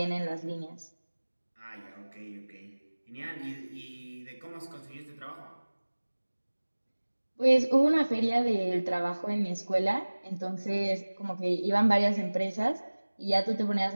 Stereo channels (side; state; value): both; inverted; correlation -1.00